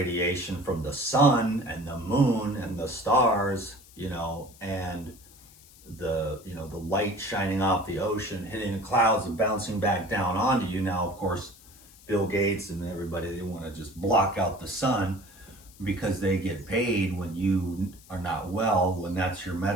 from the sun and the moon and the stars, you know, and the, you know, the light shining off the ocean, hitting the clouds and bouncing back down onto you. Now, of course, Bill Gates and everybody, they want to just block out the sun because they get paid when you are not well, when that's your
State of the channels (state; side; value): noise; left; hiss, 23 dB below the sound